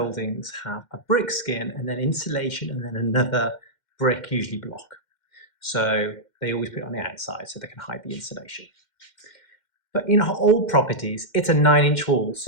have a brick skin and then insulation and then another brick, usually block. So they always put it on the outside so they can hide the insulation. But in old properties, it's a 9-inch wall,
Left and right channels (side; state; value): right; late; 2.1 ms